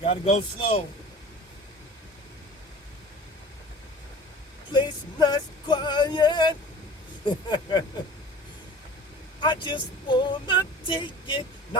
Gotta go slow. Place nice quiet. I just wanna take it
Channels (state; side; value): normal; both; correlation 0.42